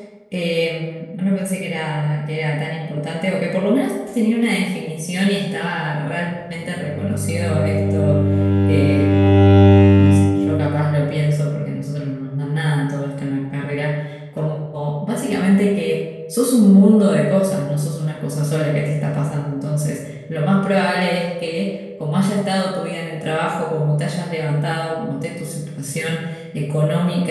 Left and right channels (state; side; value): identical; both; correlation 1.00